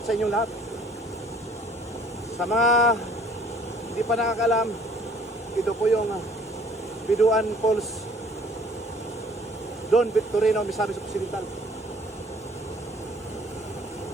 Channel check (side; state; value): both; normal; correlation 0.56